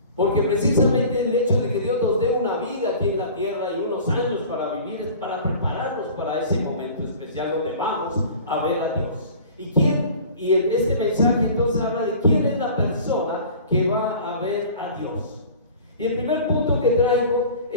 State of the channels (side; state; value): both; inverted; correlation -0.43